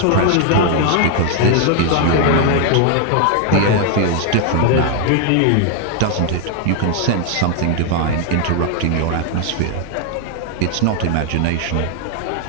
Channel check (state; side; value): different; both; correlation 0.00